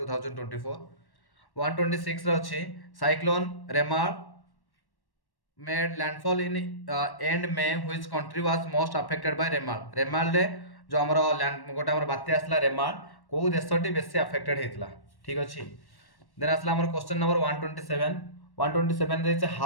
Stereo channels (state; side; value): late; right; 1.1 ms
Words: 2024। 126 रे अछि cyclone Remal made landfall in end May which country was most affected by Remal रे जो हमर लैंड गोटे हमर बात्या आसला रेमाल को देशटी बेसी अफेक्टेड हेतला। ठीक अछि। देन आसला हमर क्वेश्चन नंबर 127 रे छै